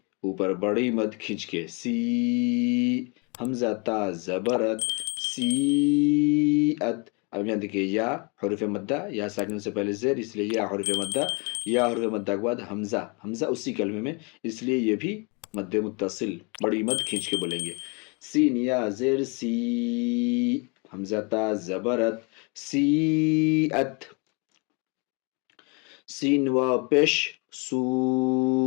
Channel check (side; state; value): right; quieter; 32.2 dB